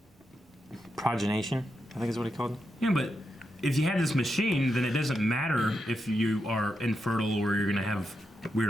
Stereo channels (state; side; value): normal; both; correlation 0.85